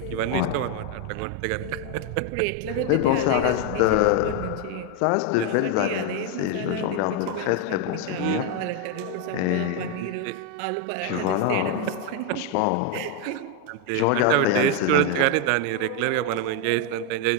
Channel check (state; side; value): different; both; correlation 0.01